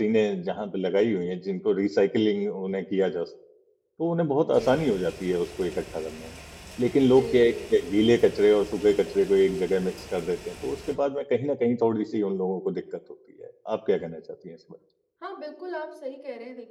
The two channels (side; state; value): both; identical; correlation 1.00